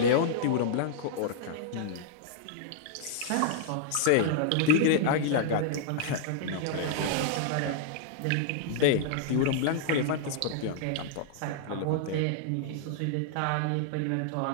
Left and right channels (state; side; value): different; both; correlation -0.01